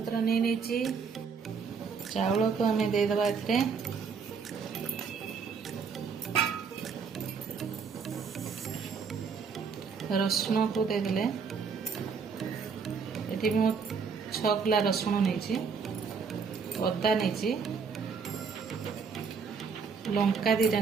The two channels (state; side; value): quieter; left; 5.7 dB